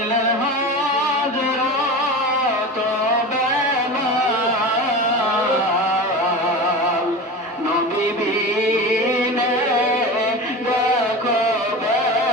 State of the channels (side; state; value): both; normal; correlation 0.29